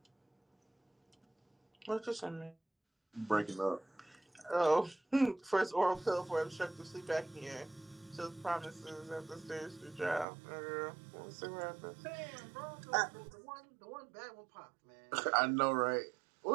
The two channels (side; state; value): left; drops out; at 10.2 s